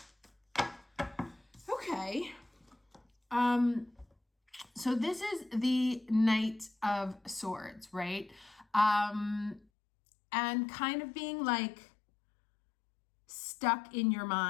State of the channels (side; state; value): right; drops out; at 9.7 s